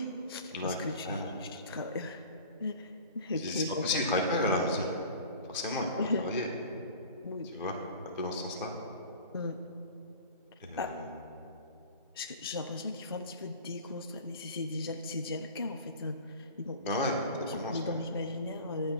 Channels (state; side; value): inverted; both; correlation -0.40